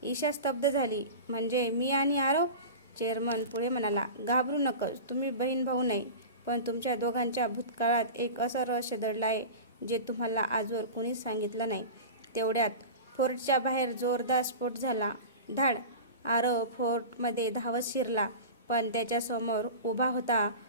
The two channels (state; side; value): inverted; both; correlation -0.31